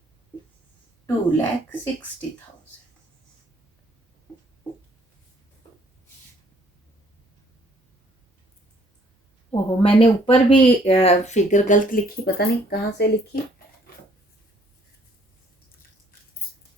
2,60,000। ओहो, मैंने ऊपर भी फिगर गलत लिखी, पता नहीं कहाँ से लिखी,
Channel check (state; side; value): normal; both; correlation 0.63